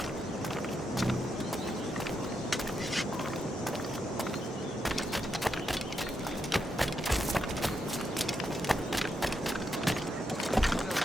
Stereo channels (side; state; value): both; normal; correlation 0.82